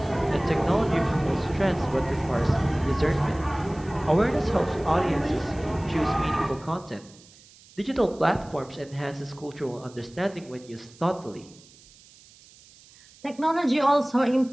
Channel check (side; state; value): right; noise; hiss, 25 dB below the sound